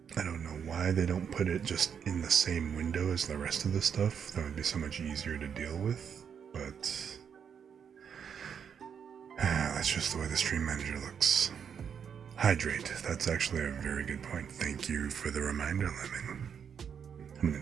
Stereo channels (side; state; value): left; quieter; 7.5 dB